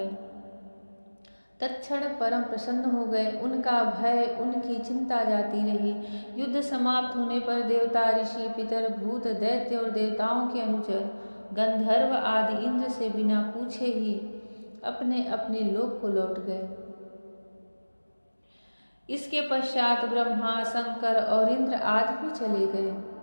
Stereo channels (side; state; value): both; inverted; correlation -1.00